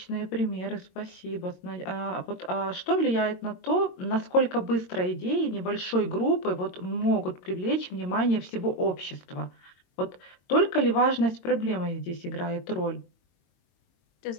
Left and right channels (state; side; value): late; right; 22 ms